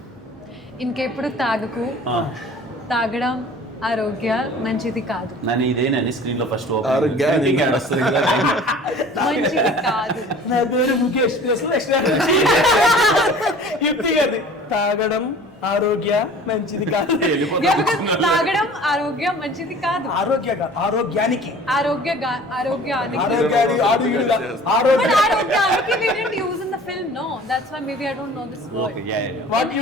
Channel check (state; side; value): normal; both; correlation 0.45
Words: ఇంకెప్పుడు తాగకు, తాగడం ఆరోగ్య మంచిది కాదు. నన్ను ఇదేనని స్క్రీన్ లో ఫస్ట్ ఆరోగ్యానికి యాడ్ వస్తుంది కదా. మంచిది కాదు. నా పేరు ముఖేష్. యుక్తి గారి తాగడం ఆరోగ్య మంచిది కాదు. తాగడం ఆరోగ్యం మంచిది కాదు. ఆరోగ్యానికి ఆరోగ్యానికి we didn't use in the film, no. That's why maybe I don't know this word. Okay, yeah. What you